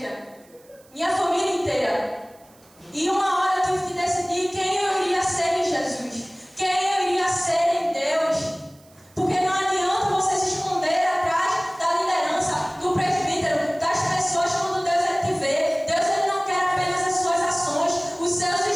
minha família inteira. E uma hora eu tive que decidir quem eu iria ser em Jesus, quem eu iria ser em Deus. Porque não adianta você se esconder atrás da liderança, do presbítero, das pessoas quando Deus ele te vê. Deus ele não quer apenas as suas ações, os seus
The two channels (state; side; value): noise; right; hiss, 29 dB below the sound